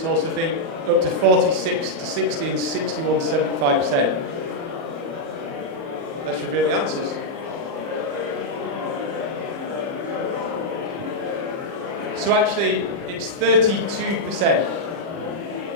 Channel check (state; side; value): late; left; 30 ms